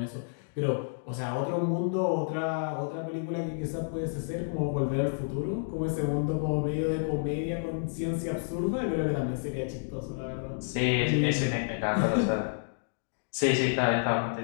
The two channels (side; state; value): right; silent; digital silence